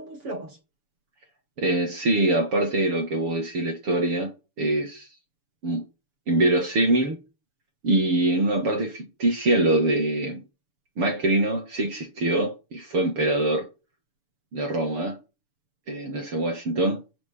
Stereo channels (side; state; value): left; late; 7.0 ms